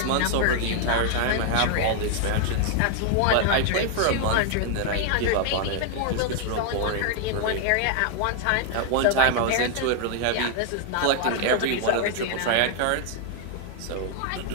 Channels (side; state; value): both; different; correlation 0.00